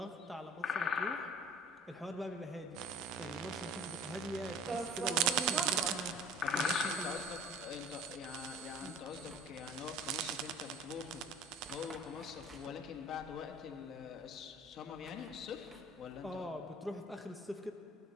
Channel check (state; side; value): normal; both; correlation 0.46